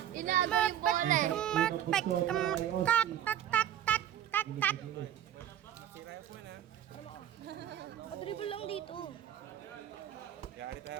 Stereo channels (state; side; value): quieter; left; 11.0 dB